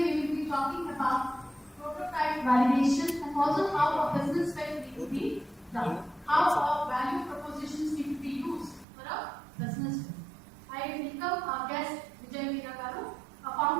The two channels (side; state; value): left; drops out; at 8.8 s